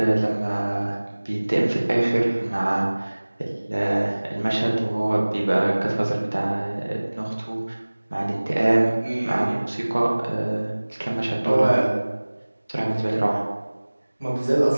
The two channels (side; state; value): both; inverted; correlation -1.00